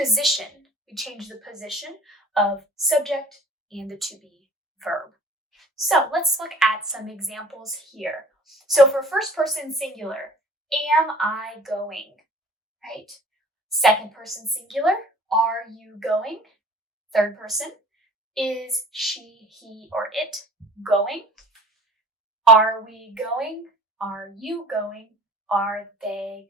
We change the position of subject and the to be verb. So let's look at some examples here. So for first person singular, am I going? Right? Second person singular, are you going? Third person, is she, he, or it going? Are we going? Are you going? Are they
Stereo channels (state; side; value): normal; both; correlation 0.48